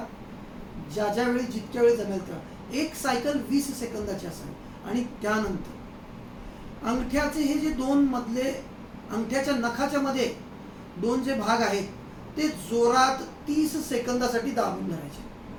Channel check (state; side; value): identical; both; correlation 1.00